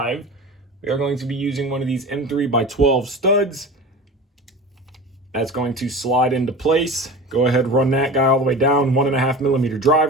we are going to be using one of these M3 by 12 studs. That's going to slide into place. Go ahead, run that guy all the way down, 1.5 millimeter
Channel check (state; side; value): normal; both; correlation 0.33